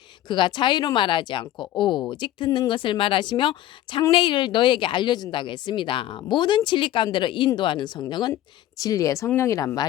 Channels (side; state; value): right; quieter; 13.4 dB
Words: 그가 자유로 말하지 않고 오직 듣는 것을 말하시며 장래일을 너에게 알려준다고 했습니다. 모든 진리 가운데로 인도하는 성령은 진리의 성령이란